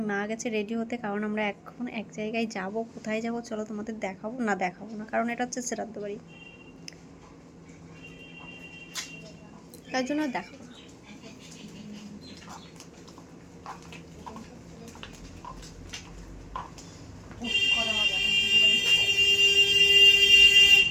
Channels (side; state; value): both; identical; correlation 1.00